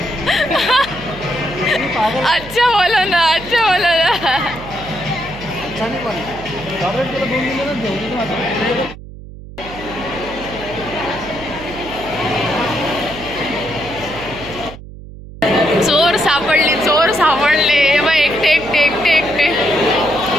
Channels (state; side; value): noise; right; hum, 15 dB below the sound